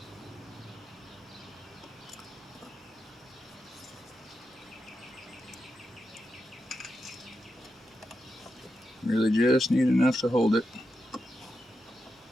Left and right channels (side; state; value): both; normal; correlation 0.87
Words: just need enough to hold it.